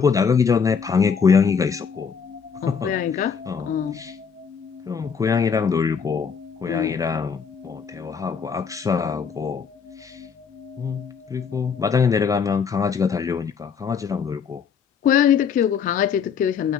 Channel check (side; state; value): right; quieter; 6.4 dB